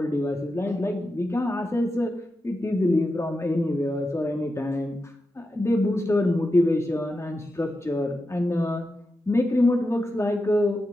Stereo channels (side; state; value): both; normal; correlation 0.89